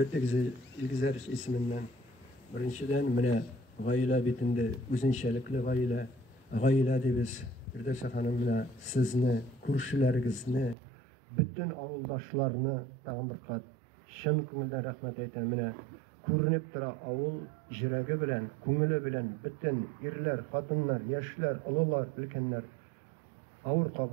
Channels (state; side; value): drops out; left; at 10.8 s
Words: güzel isminden. Birinciden mene gaile bitinde üzünçelikli gaile de biz bir de hanım mene sizni, kurşularınızı, bütün avuldaşlarını tağın bir kat şın көңілден rahmet eyten mene көрініп тұра авыл жүрегі білән, көңілі білән, bütün ирләр, қатынлар, яшьләр, олылар, өлкәннәр авыр